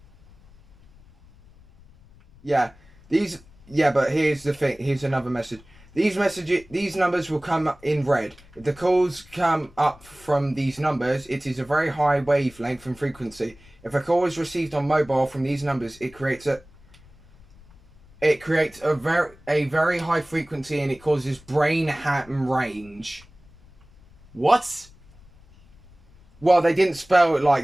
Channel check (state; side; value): noise; left; rumble, 25 dB below the sound